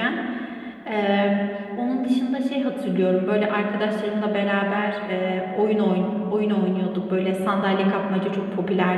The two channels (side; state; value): both; identical; correlation 1.00